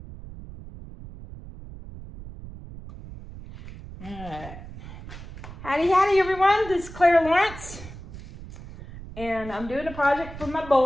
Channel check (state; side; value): noise; right; rumble, 14 dB below the sound